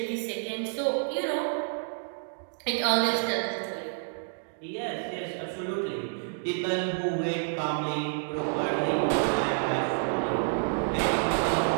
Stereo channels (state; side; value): silent; left; digital silence